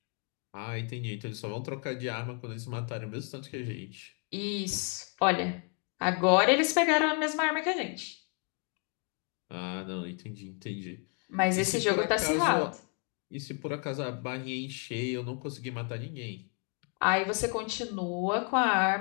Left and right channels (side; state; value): right; quieter; 36.8 dB